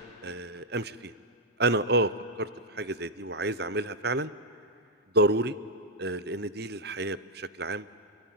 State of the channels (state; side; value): normal; both; correlation -0.02